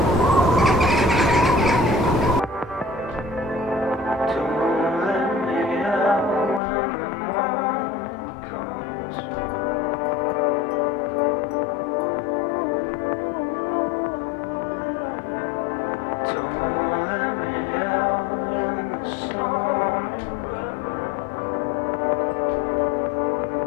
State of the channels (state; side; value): drops out; right; at 6.6 s